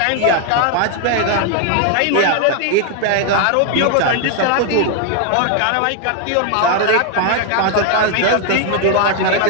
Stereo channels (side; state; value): both; different; correlation 0.00